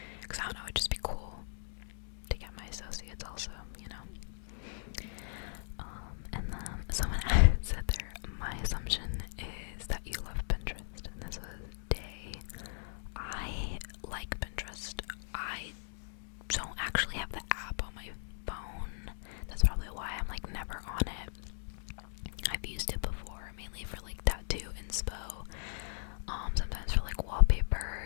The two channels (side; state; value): right; silent; digital silence